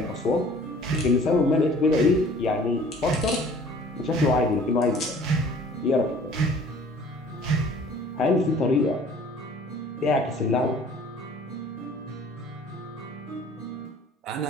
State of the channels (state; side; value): normal; both; correlation 0.51